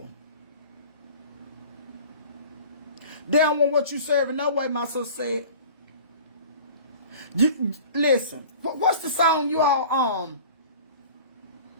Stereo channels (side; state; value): both; inverted; correlation -0.42